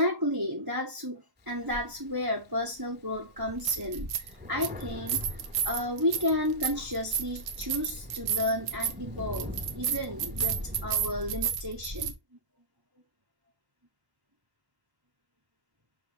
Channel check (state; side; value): late; left; 1.1 ms